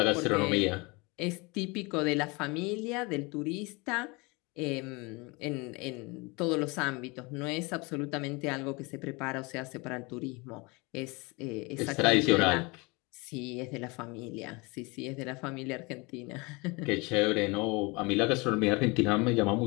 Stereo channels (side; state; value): right; quieter; 26.9 dB